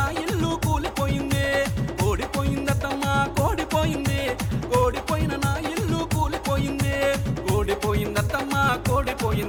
ఇల్లు కూలిపోయింది. ఓడిపోయిందటమ్మా కోడిపోయింది, ఓడిపోయిన నా ఇల్లు కూలిపోయింది. ఓడిపోయిందటమ్మా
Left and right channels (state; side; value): identical; both; correlation 1.00